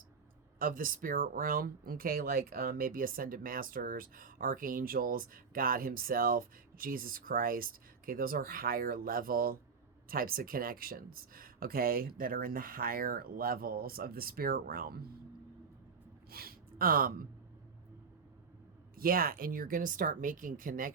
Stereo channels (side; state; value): left; quieter; 5.5 dB